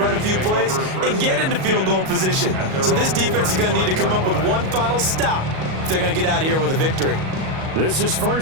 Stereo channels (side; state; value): left; late; 38 ms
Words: a few plays and get into field goal position. So this defense is going to need to come up with one final stop if they're going to get out of here with a victory. This is